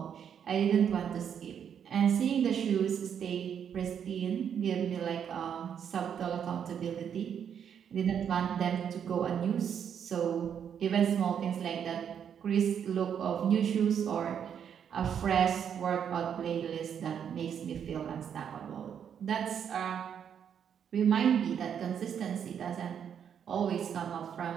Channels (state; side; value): quieter; left; 8.2 dB